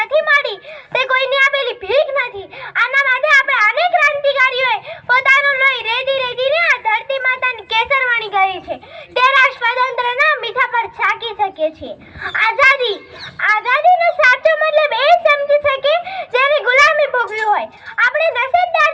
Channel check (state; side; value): identical; both; correlation 1.00